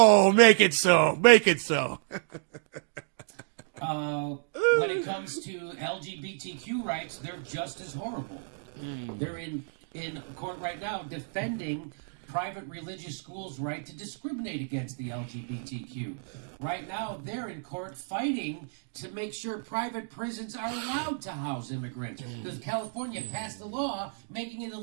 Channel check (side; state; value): left; silent; digital silence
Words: make it so. Make it so. When it comes to LGBTQ rights, they're just as horrible. They're in in court right now defending private religious schools' right to discriminate against the LGBTQ. Right now, they're in court fighting to make sure private prisons are allowed to house immigrants. Because California passed a law making it